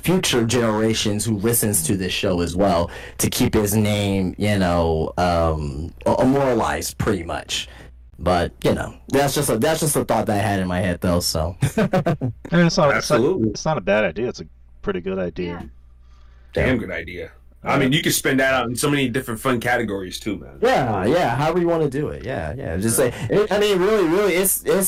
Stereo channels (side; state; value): both; identical; correlation 1.00